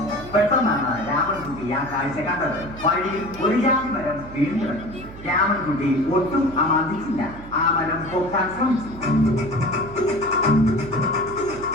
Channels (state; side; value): noise; right; hum, 15 dB below the sound